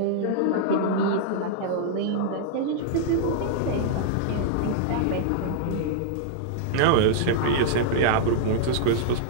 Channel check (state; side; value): different; both; correlation -0.01